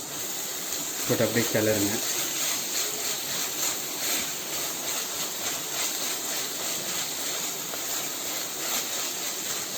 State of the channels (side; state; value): both; identical; correlation 1.00